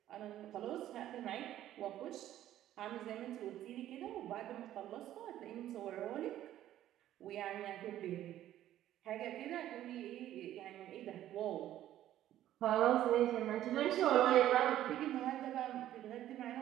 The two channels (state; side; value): quieter; left; 12.7 dB